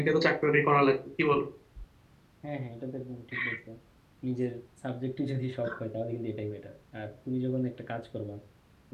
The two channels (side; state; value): both; identical; correlation 1.00